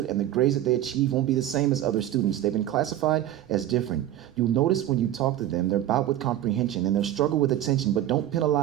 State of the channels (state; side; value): quieter; left; 12.6 dB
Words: and the grades that they achieve won't be the same as other students. They've been classified as different. You'll notice when you talk to them, they're bout with comprehension, and they'll struggle with attention, but don't